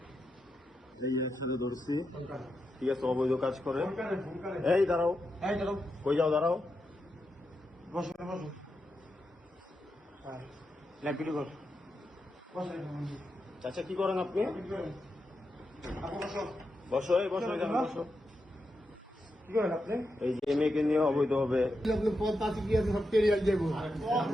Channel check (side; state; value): both; normal; correlation 0.86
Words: ধরছি, ঠিক আছে, অবৈধ কাজ করে। এই দাঁড়াও, কই যাও, দাঁড়াও, বসো বসো, আচ্ছা কি করেন আপনি? বসো, এই বসো, এখানে বসো। এই যে মেয়েকে নিয়ে অবৈধ হবে।